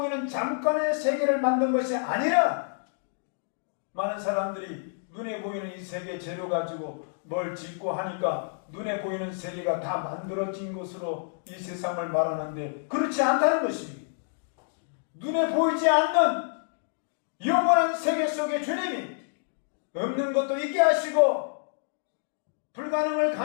잠깐의 세계를 만든 것이 아니라 많은 사람들이 눈에 보이는 이 세계 재료 가지고 뭘 짓고 하니까 눈에 보이는 세계가 다 만들어진 것으로 이 세상을 말하는데 그렇지 않다는 것입니다. 눈에 보이지 않는 영원한 세계 속에 주님이 없는 것도 있게 하시고 불가능을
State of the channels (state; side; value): silent; right; digital silence